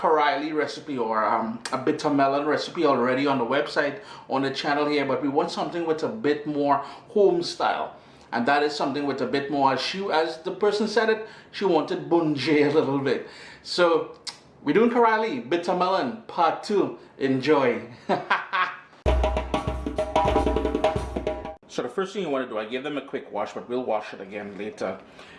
recipe or a bitter melon recipe already on the website, on the channel here, but we want something with a bit more home style. And that is something with a bit more, as the person said it, she wanted bunjay a little bit. So, we're doing Carilie, bitter melon, part 2. Enjoy. So the first thing you want to do, I gave them a quick wash, but we'll wash it again later.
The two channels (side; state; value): both; identical; correlation 1.00